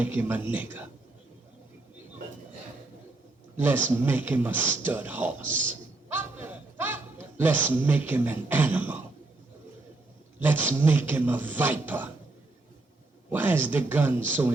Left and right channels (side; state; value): left; quieter; 3.1 dB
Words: him a nigger. Let's make him a stud horse. Let's make him an animal. Let's make him a viper. Why is the gun so